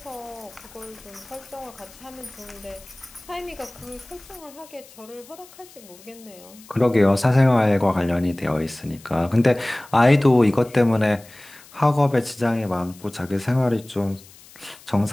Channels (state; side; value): noise; left; hiss, 23 dB below the sound